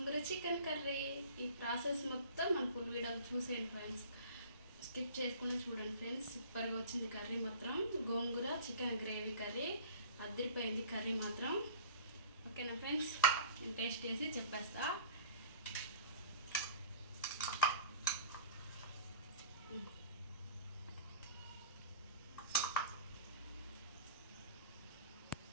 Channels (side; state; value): both; inverted; correlation -0.44